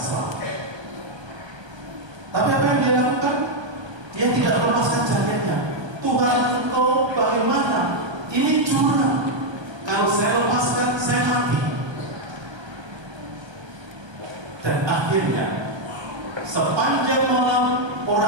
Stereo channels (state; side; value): late; left; 1.2 ms